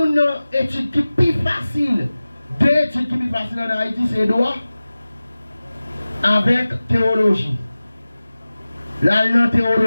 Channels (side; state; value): both; inverted; correlation -0.97